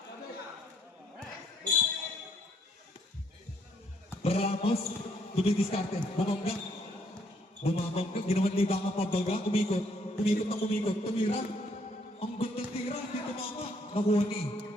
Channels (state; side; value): normal; both; correlation 0.69